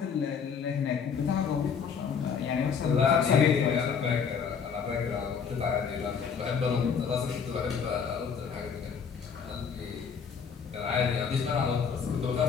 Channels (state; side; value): quieter; right; 6.5 dB